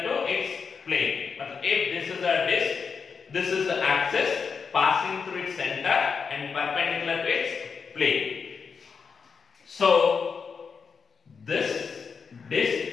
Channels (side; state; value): right; quieter; 5.7 dB